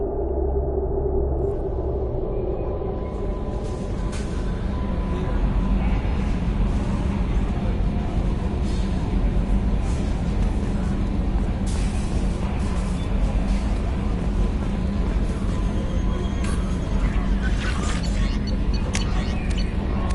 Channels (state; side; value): identical; both; correlation 1.00